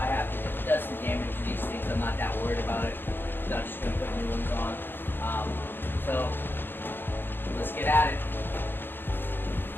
have to, if it does some damage to these things, I'm not that worried about it. So I'm just going to put new ones on. So let's get at it.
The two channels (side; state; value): right; late; 0.10 ms